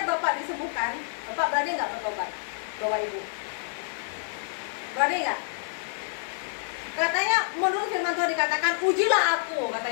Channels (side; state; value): right; silent; digital silence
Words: Bapak disembuhkan, Bapak berani nggak bertobat? Bawa ibu. Berani nggak? Katanya menurut firman Tuhan dikatakan, ujilah aku,